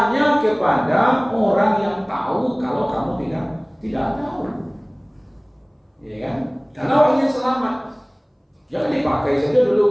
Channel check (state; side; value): identical; both; correlation 1.00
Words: kepada orang yang tahu kalau kamu tidak tahu. Ya kan? Karena orang ingin selamat. Jangan dipakai saja